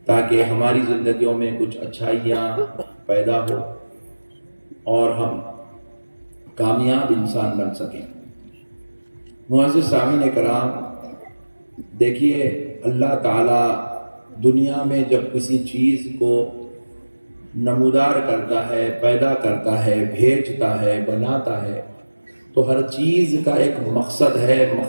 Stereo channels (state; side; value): inverted; both; correlation -1.00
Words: تاکہ ہماری زندگیوں میں کچھ اچھائیاں پیدا ہو اور ہم کامیاب انسان بن سکیں۔ معزز سامعین کرام، دیکھیے اللہ تعالیٰ دنیا میں جب کسی چیز کو نمودار کرتا ہے، پیدا کرتا ہے، بھیجتا ہے، بناتا ہے، تو ہر چیز کا ایک مقصد ہے،